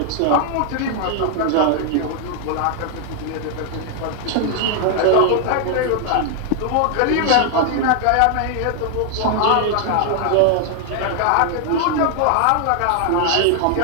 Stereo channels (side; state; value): both; different; correlation 0.00